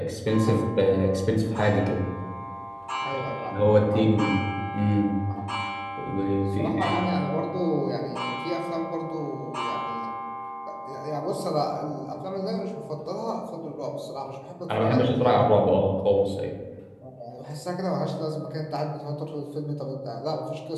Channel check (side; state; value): both; identical; correlation 1.00